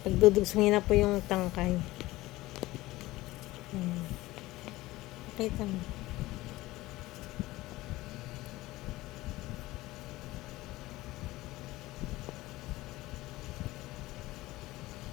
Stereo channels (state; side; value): quieter; right; 18.4 dB